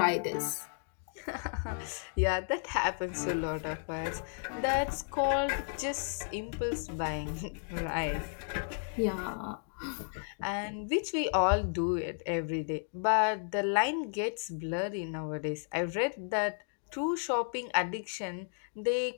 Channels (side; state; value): right; silent; digital silence